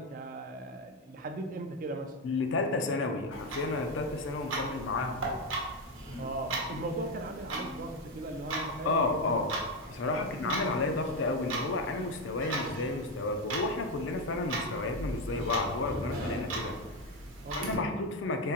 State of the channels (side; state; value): both; normal; correlation 0.10